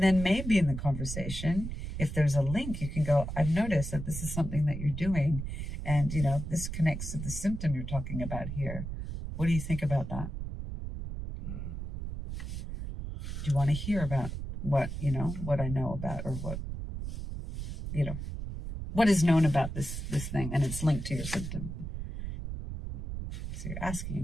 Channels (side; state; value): right; noise; rumble, 6 dB below the sound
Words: then maybe in the conversation, if there's a link, you can go, I've noticed that this is something that you're doing, and, you know, this connects to the symptom you're talking about here. What do you think about that? Do you want to hear about what I know about, or what is known about this thing, and it's linked to your symptom? So you're asking